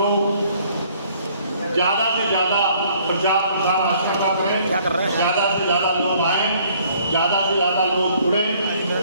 ज़्यादा से ज़्यादा प्रचार प्रसार आस्था का करें, ज़्यादा से ज़्यादा लोग आए, ज़्यादा से ज़्यादा लोग जुड़े।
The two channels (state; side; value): inverted; both; correlation -0.60